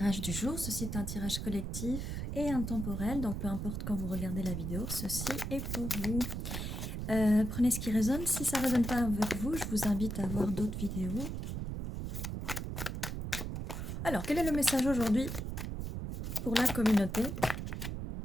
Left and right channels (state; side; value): noise; right; rumble, 4 dB below the sound